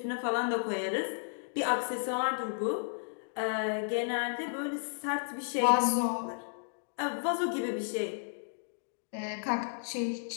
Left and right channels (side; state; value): right; silent; digital silence